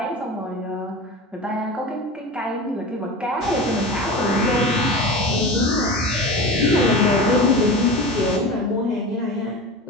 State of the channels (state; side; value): normal; both; correlation 0.30